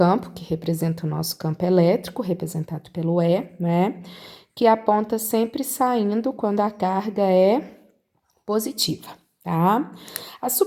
que representam o nosso campo elétrico, representado pelo E, né? Que aponta sempre saindo quando a carga é positiva, tá? As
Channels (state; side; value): identical; both; correlation 1.00